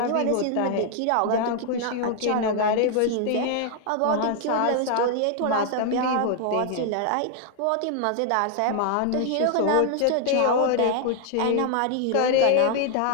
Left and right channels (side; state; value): both; different; correlation 0.00